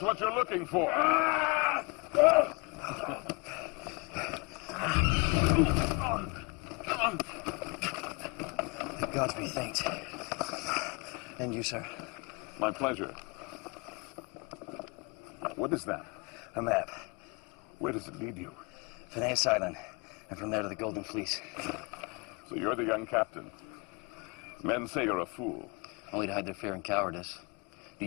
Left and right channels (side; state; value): right; quieter; 29.4 dB